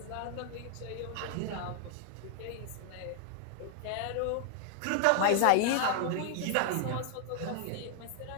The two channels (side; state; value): both; different; correlation 0.00